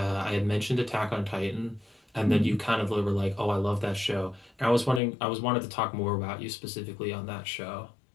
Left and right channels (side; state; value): right; drops out; at 5.0 s